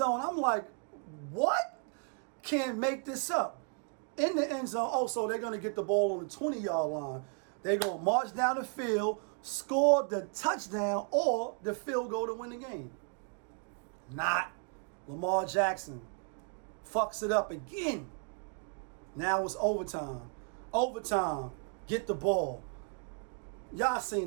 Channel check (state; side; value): quieter; left; 39.6 dB